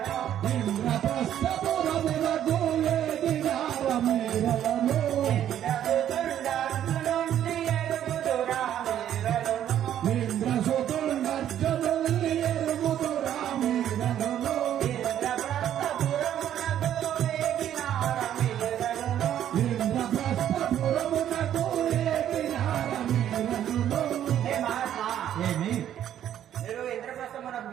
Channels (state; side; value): quieter; left; 10.8 dB